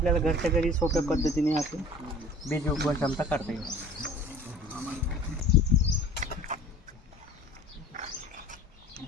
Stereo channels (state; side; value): normal; both; correlation 0.45